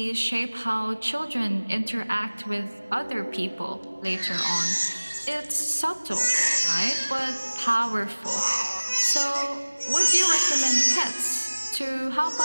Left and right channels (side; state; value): both; inverted; correlation -1.00